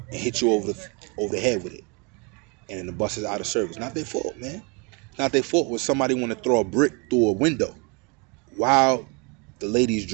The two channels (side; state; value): left; quieter; 32.4 dB